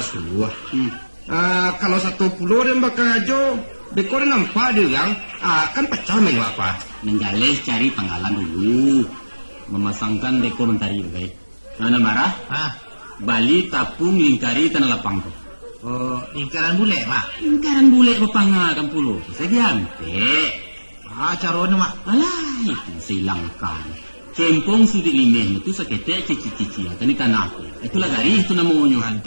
suah. Kalau satu pulau dan bakal ajo, dekor nampak dia yang kan pecah main apa. Menggales cari panggalan dulu. Memasangkan dekor mentari baik. Mana marah? Bali tapung lingkari tanah lapang tu. Lingkaran bule mak. Lingkaran bule bepanga kampulo. Saya diante. Caranya mak. Alah itu silangkan. Cempong sudi limeh itu sakete cici-cici. Tani tanah aku. Itulah dari itu namanya.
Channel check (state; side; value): inverted; both; correlation -1.00